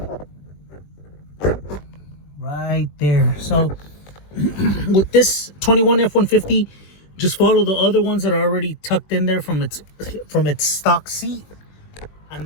Right there. So with this 21 F-150, just follow the other ones that are already tucked in there from its stock seat, and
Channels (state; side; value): late; right; 21 ms